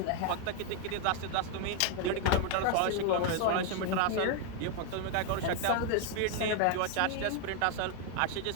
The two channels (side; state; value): both; different; correlation 0.01